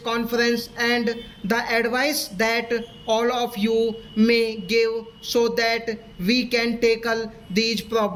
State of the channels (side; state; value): both; identical; correlation 1.00